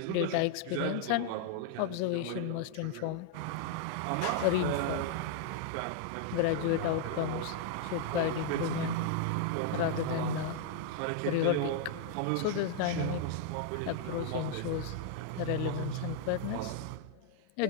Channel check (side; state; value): both; different; correlation 0.00